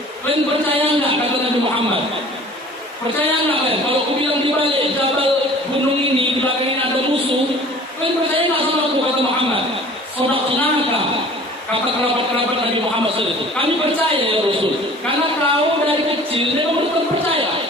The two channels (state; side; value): normal; both; correlation 0.47